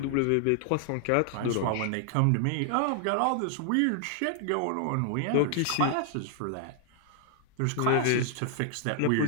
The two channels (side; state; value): both; different; correlation 0.00